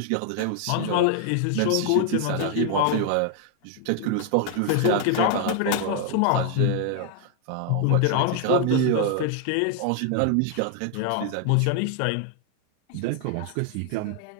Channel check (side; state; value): both; different; correlation 0.00